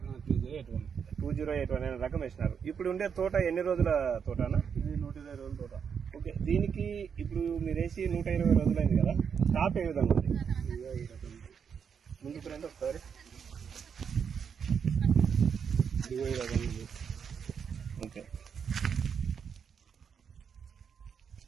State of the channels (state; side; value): quieter; left; 6.9 dB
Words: 2081 అనే రకం వేసినారు. ఇప్పుడు ఉండే తోట ఎన్ని రోజుల తోటనా? ఇది 120 రోజుల తోట. ఓకే, దీనికి ఇప్పుడు మీరు వేసి 120 రోజులైంది కదా, స్టాప్ ఏ విధంగా ఉంది? ముందుకు రండి ఒకసారి. ఓకే,